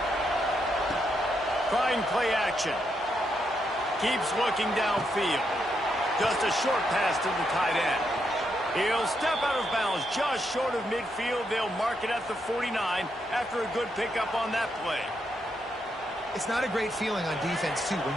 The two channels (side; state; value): both; normal; correlation 0.80